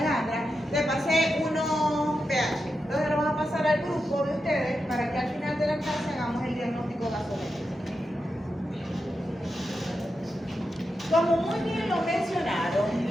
le pasé unos pH. Entonces lo vamos a pasar al grupo de ustedes para que al final de la clase hagamos el diagnóstico gasométrico. Como muy bien lo mencionaron,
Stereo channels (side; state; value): both; normal; correlation 0.88